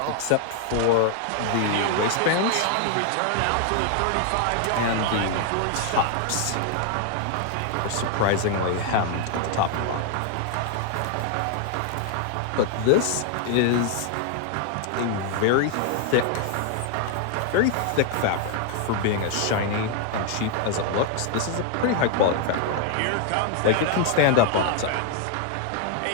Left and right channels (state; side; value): different; both; correlation 0.00